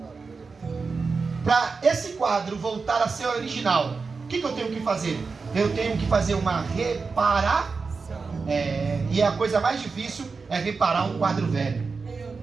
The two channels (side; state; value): left; quieter; 4.6 dB